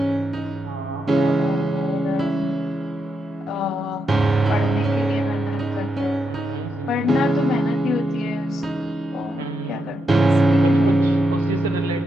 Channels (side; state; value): both; normal; correlation 0.83